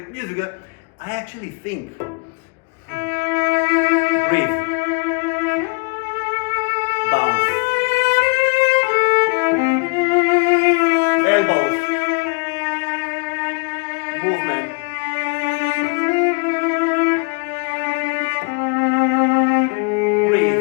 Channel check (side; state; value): right; quieter; 32.8 dB